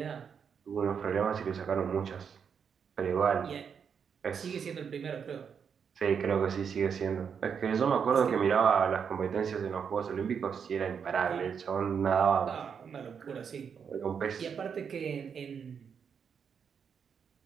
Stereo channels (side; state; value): left; quieter; 6.9 dB